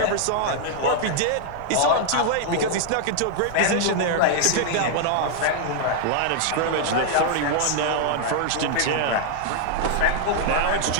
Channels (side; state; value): both; different; correlation -0.01